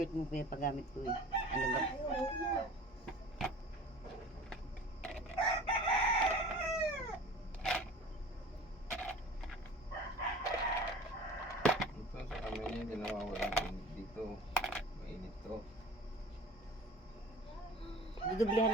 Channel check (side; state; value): both; normal; correlation 0.41